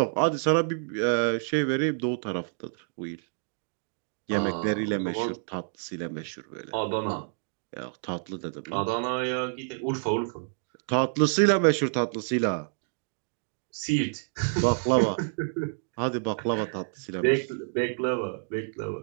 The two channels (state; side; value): silent; left; digital silence